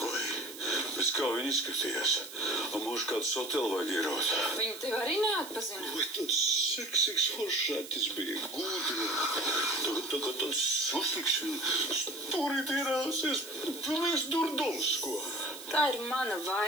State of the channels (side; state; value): right; noise; hiss, 14 dB below the sound